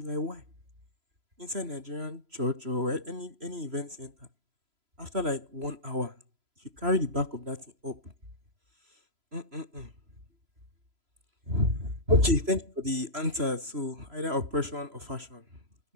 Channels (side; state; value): left; late; 3.0 ms